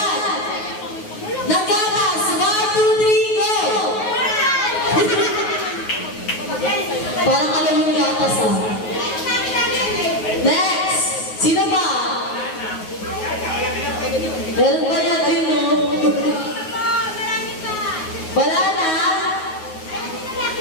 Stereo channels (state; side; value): late; right; 9.4 ms